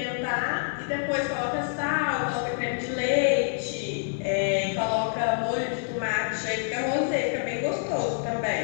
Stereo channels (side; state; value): right; silent; digital silence